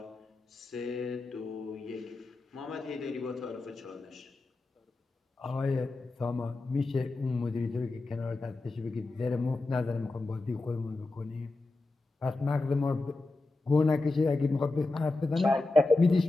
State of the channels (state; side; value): quieter; right; 3.2 dB